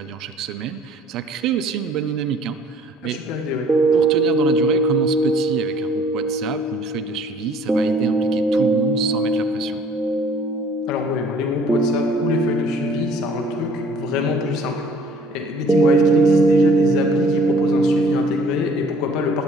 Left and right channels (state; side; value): normal; both; correlation 0.55